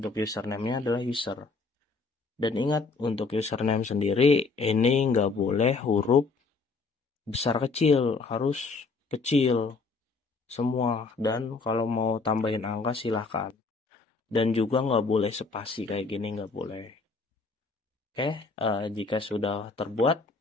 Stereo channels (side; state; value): right; quieter; 4.1 dB